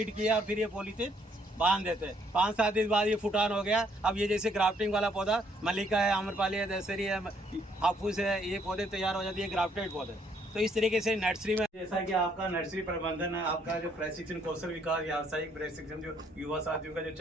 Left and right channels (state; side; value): normal; both; correlation 0.68